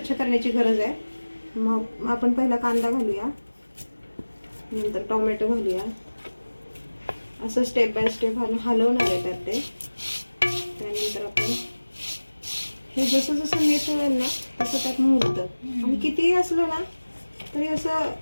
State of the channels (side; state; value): both; inverted; correlation -1.00